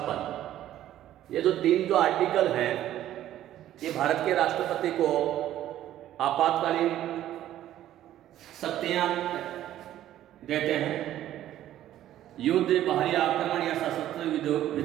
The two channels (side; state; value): left; quieter; 12.6 dB